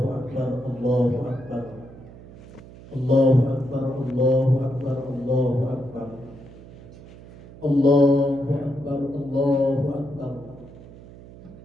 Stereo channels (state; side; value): noise; right; hum, 18 dB below the sound